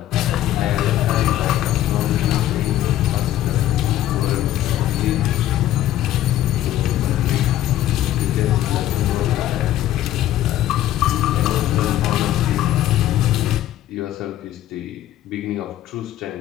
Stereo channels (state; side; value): quieter; right; 13.1 dB